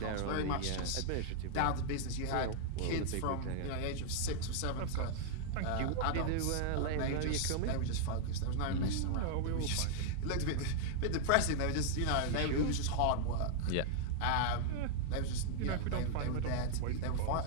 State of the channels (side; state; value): both; different; correlation -0.01